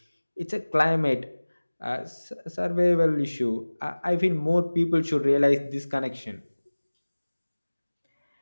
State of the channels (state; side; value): inverted; both; correlation -1.00